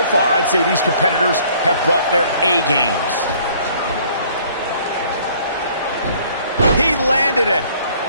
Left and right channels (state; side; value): inverted; both; correlation -0.58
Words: far, I'd say these competitors have brought their A games. He landed it.